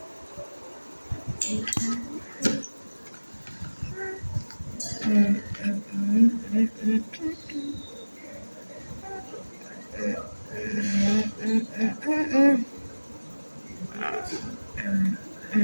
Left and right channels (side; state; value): both; inverted; correlation -1.00